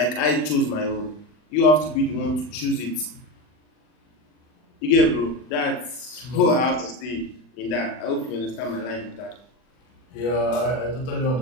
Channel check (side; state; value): right; late; 39 ms